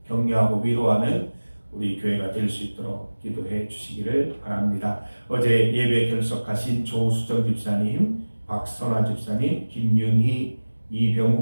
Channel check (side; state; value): both; inverted; correlation -1.00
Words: 격려하고 위로하는 우리 교회가 될 수 있도록 기도해 주시기를 바랍니다. 어제 예배 결석하신 조수정 집사님, 박선화 집사님, 김윤희,